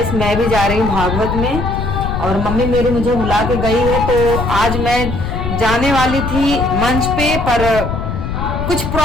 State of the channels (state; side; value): noise; left; rumble, 3 dB below the sound